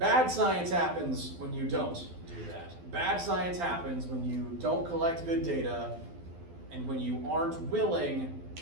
science happens when you don't do that. Bad science happens when you don't collect good data and when you aren't willing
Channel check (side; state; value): left; late; 12 ms